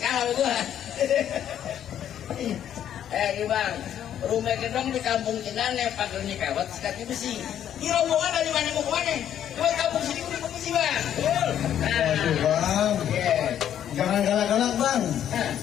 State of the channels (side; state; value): right; quieter; 10.2 dB